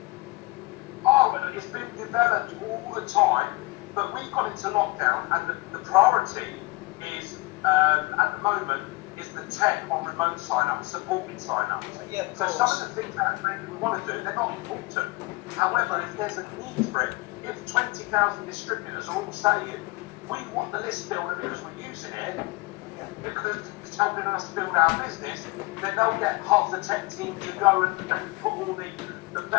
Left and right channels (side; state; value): right; quieter; 24.1 dB